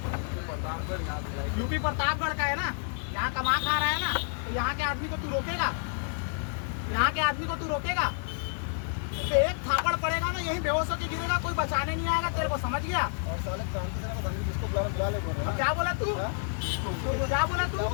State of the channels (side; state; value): right; silent; digital silence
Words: यूपी प्रतापगढ़ का है ना, यहाँ कमा खा रहा है ना, तो यहाँ के आदमी को तू रोकेगा? यहाँ के आदमी को तू रोकेगा? तो एक थापड़ पड़ेगा ना, यही बेहोश होकर गिरेगा, कोई बचाने नहीं आएगा तेरे को, समझ गया? क्या बोला तू? क्या बोला तू?